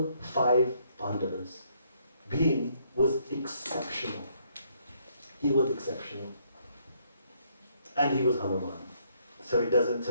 5 Pandavas. Bhim was exceptional. He was exceptional. And he was Hanuman. So it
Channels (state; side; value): inverted; both; correlation -0.69